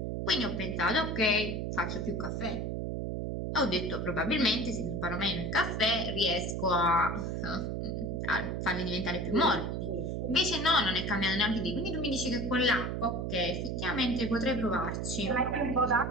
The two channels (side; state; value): right; noise; hum, 2 dB below the sound